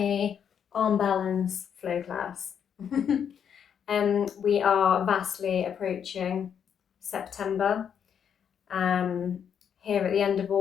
arm balance flow class. We are vastly approaching September. Here at the end of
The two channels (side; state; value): right; quieter; 8.0 dB